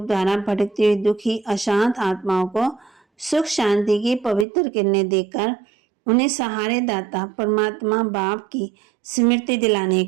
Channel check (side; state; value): left; drops out; at 4.5 s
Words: द्वारा भटकती हुई दुखी अशांत आत्माओं को सुख शांति की पवित्र किरणें देकर उन्हें सहारे दाता परमात्मा बाप की स्मृति दिलाने